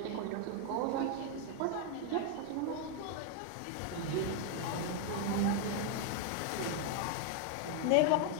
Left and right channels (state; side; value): different; both; correlation 0.00